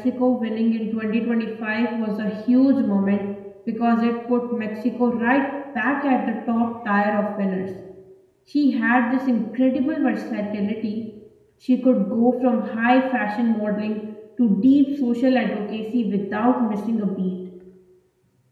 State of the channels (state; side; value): identical; both; correlation 1.00